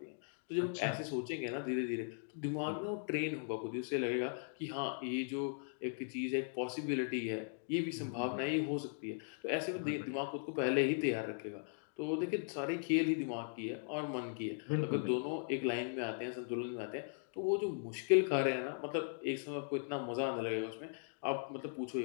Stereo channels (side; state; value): right; silent; digital silence